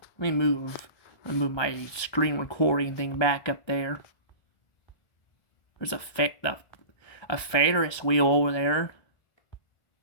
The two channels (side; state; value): right; late; 1.2 ms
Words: Let me move my screen recording thing back up there. There's a Ferris wheel over there.